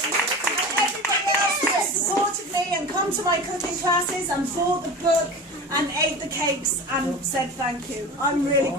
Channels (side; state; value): both; normal; correlation 0.32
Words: And come to my cooking classes and bought the book and ate the cakes and said thank you. I'm really